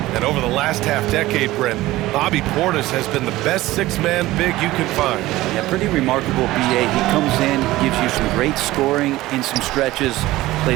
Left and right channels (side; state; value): left; quieter; 17.3 dB